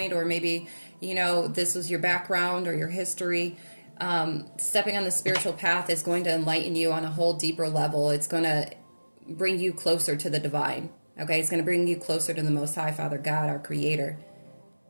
or maybe, this was your background or your history. Stepping on the spiritual path is going to enlighten you on a whole deeper level. It's going to bring you closer to the divine. Okay? It's going to bring you closer to the Most High, Father God, our Creator,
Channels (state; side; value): inverted; both; correlation -1.00